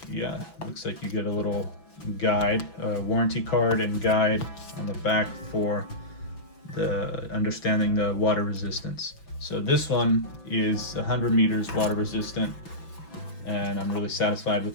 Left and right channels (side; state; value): right; late; 6.0 ms